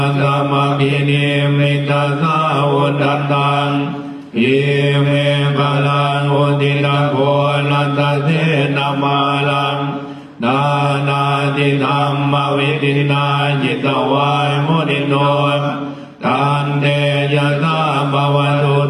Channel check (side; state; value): both; identical; correlation 1.00